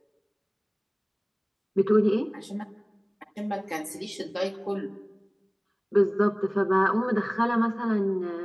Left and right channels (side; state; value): both; identical; correlation 1.00